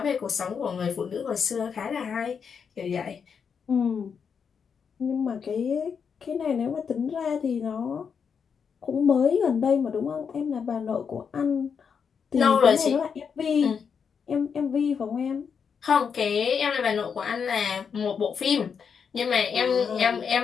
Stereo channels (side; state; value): right; quieter; 6.5 dB